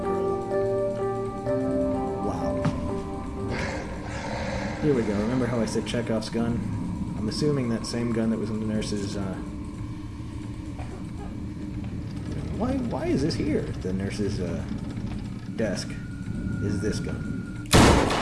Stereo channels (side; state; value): both; identical; correlation 1.00